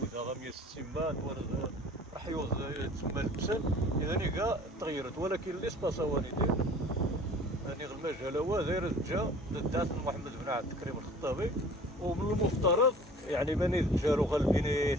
160 بات توارد رحيوز تسمى البسل اذا كاع تغيرت ولكن الاسباس هو ندير يعني المجال هو داير جا ضد محمد بن عبد الكريم الخطابي ومن المفترض يعني بني جارو غالبين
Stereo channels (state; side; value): normal; both; correlation 0.47